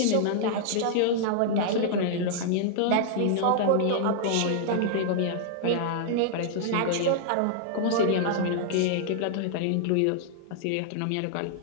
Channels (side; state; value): both; different; correlation -0.01